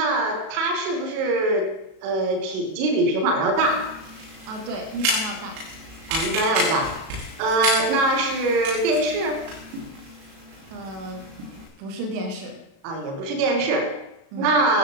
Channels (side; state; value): left; late; 36 ms